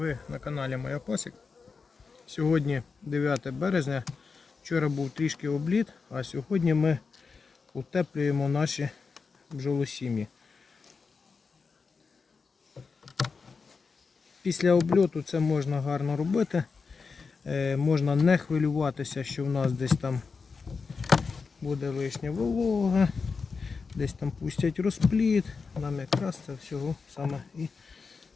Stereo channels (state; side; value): quieter; right; 4.9 dB